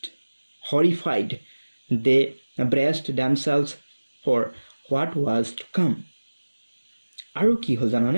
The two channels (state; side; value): inverted; both; correlation -1.00